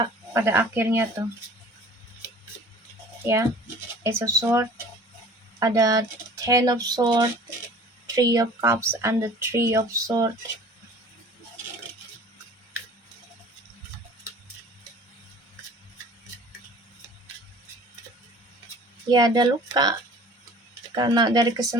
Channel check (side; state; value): both; normal; correlation 0.47